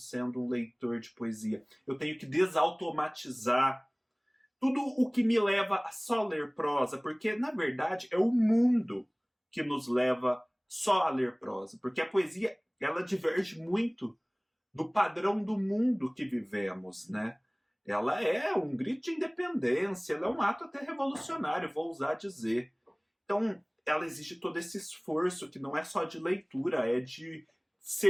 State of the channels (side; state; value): both; identical; correlation 1.00